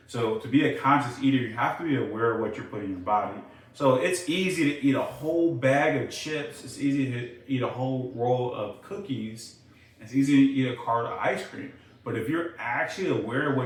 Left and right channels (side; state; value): both; identical; correlation 1.00